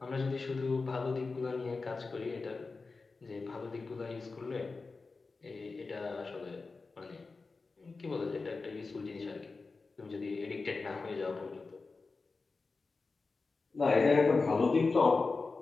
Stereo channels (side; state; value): right; quieter; 4.1 dB